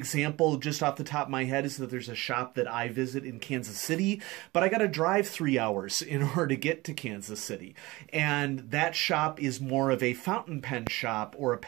just off the top of my head is that there's a shop that I visit in Kansas City, but I got to drive 3 hours in order to get to Kansas City. And that shop is more of a fountain pen shop or a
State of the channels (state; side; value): quieter; left; 21.2 dB